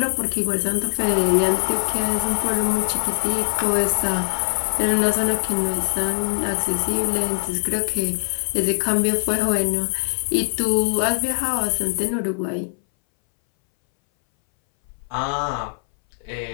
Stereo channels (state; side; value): silent; right; 62 dB below the other